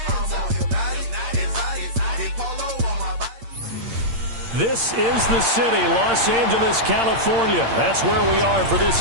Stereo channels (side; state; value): left; late; 8.7 ms